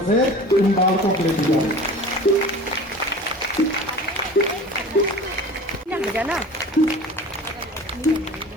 से इन बालकों को ले दी जाए। ना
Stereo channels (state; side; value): normal; both; correlation 0.39